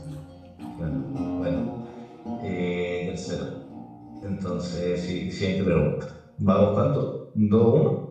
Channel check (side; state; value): both; identical; correlation 1.00